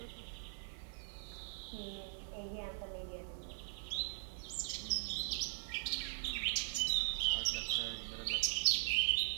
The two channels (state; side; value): silent; left; 51 dB below the other